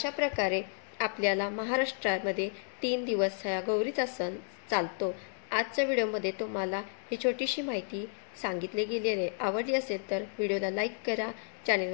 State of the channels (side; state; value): right; silent; digital silence